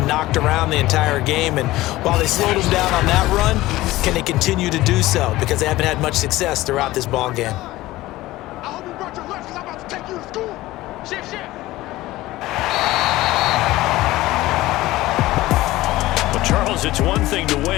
knocked around the entire game, and while they slowed them down on that run, can they continue to do so? Because they haven't had much success throughout this ball game. I hope you brought your lunch because I'm about to take you to school. Shift. Charles, it's one thing to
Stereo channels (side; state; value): right; quieter; 17.6 dB